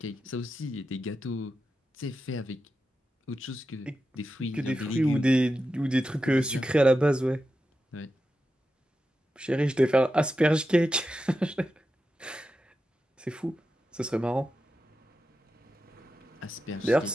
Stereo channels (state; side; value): normal; both; correlation 0.90